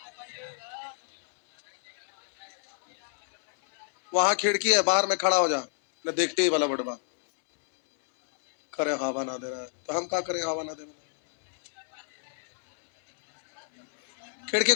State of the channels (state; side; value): silent; right; digital silence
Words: वहां खिड़की है, बाहर में खड़ा हो जा, न देखते ही वाला बड़बा करे हवा ना दे रहा है तो हम क्या करें, हवा ना दे रहा। खिड़की